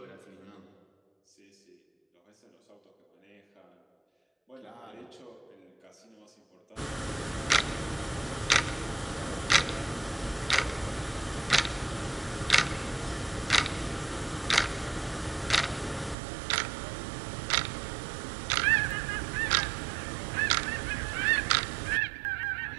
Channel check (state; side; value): drops out; left; at 16.2 s